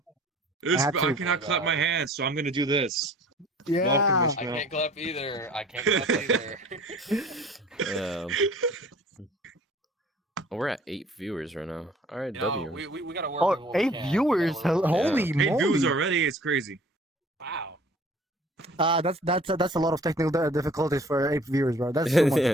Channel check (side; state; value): both; normal; correlation 0.50